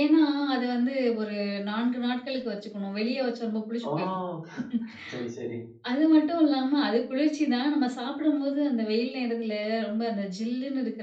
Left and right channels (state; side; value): identical; both; correlation 1.00